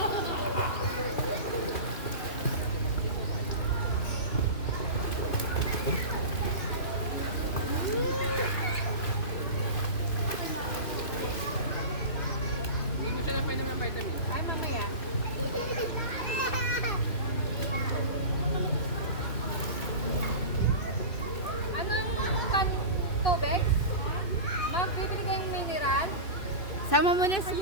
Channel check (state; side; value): late; right; 2.6 ms